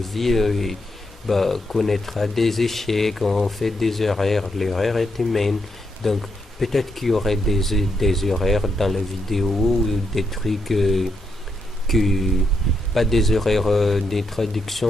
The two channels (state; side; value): normal; both; correlation 0.80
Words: connaîtra des échecs, on fait des erreurs, l'erreur est humaine. Donc peut-être qu'il y aurait des erreurs dans la vidéo, ou des trucs pas des erreurs de